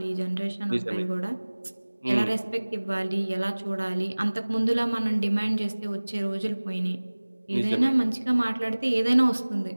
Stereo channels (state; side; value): inverted; both; correlation -1.00